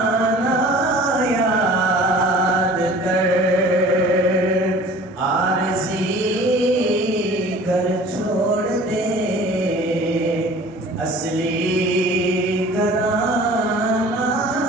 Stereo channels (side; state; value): both; normal; correlation 0.46